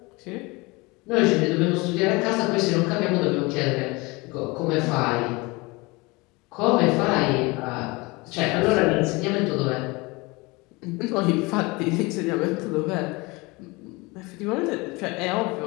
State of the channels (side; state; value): right; quieter; 24.9 dB